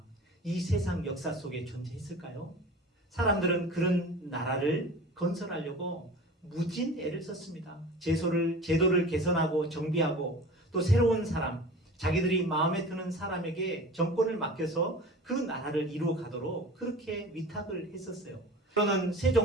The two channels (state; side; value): normal; both; correlation 0.38